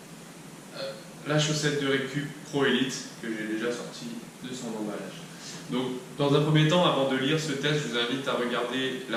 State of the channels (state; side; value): identical; both; correlation 1.00